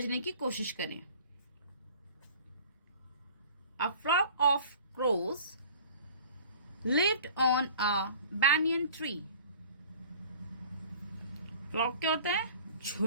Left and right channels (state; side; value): inverted; both; correlation -0.46